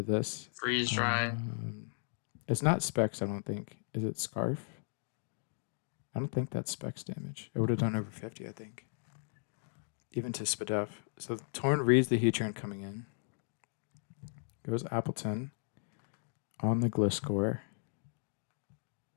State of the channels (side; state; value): right; silent; digital silence